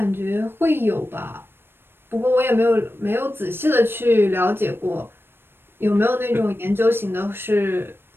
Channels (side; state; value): left; late; 0.10 ms